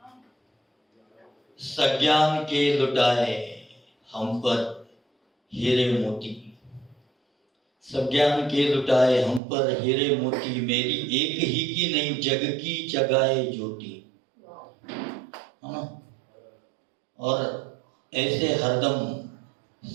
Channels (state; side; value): drops out; left; at 9.4 s